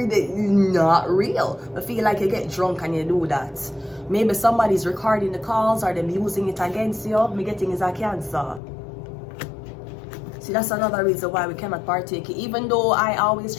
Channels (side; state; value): right; drops out; at 8.6 s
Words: that is not real. I feel like you get drunk and you do that. Maybe somebody's recording the calls or them using it against you. Me getting is a Cancer. See, that's another reason why we cannot partake, even though I always